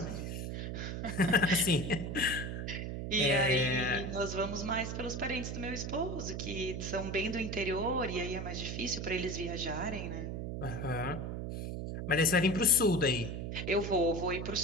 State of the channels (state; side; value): noise; right; hum, 4 dB below the sound